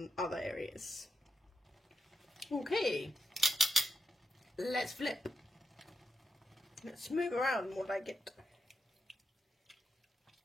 other areas. Okay, let's flip. Let's move around what I get.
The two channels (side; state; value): both; normal; correlation 0.84